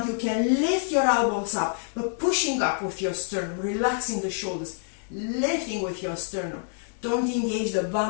you can lift your elbows up, but pushing up with your sternum, relaxing the shoulders, lifting with your sternum. Don't engage the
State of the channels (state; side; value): silent; right; digital silence